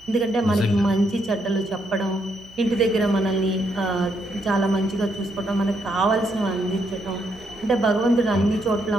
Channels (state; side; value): noise; right; hum, 27 dB below the sound